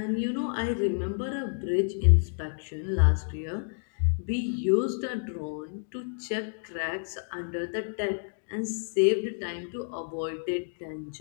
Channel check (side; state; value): right; silent; digital silence